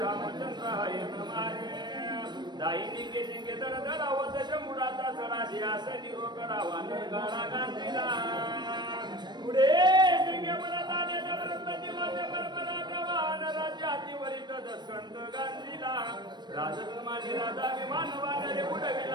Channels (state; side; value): late; left; 0.21 ms